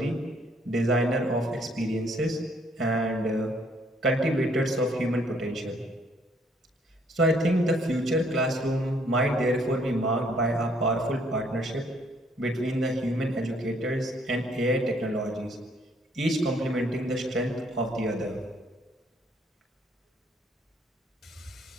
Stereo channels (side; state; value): both; normal; correlation 0.65